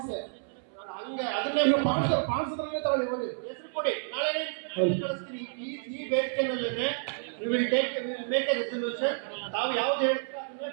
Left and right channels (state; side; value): silent; left; 58 dB below the other